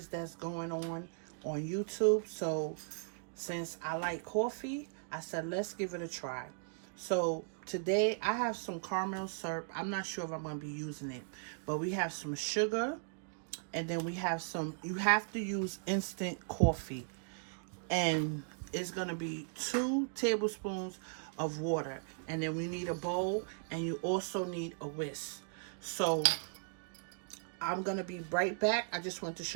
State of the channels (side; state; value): left; silent; digital silence